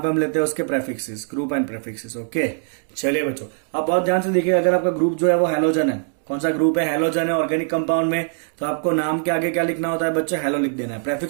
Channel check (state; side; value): silent; left; 64 dB below the other